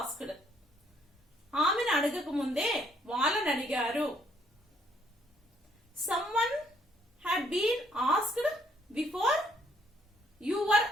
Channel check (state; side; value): normal; both; correlation 0.67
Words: ఆమెను అడగక ముందే వాళ్ళని అడిగారు. Someone had been asked before you were